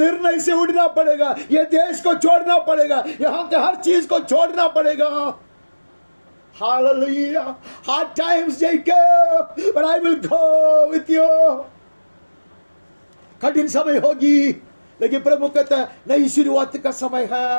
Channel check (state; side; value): inverted; both; correlation -1.00